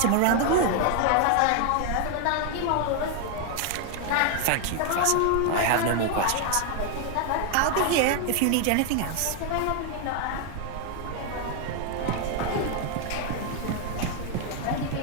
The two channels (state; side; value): different; both; correlation 0.00